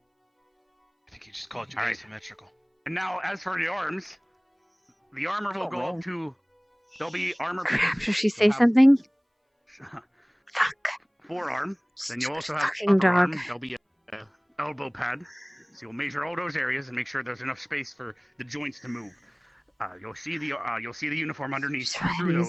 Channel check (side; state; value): both; identical; correlation 1.00